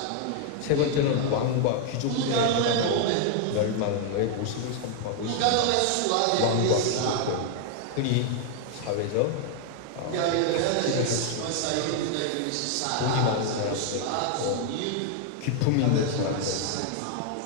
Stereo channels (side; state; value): both; different; correlation 0.00